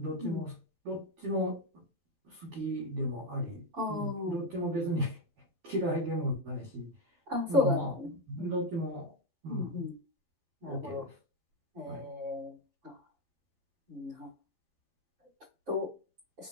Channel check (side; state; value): left; late; 11 ms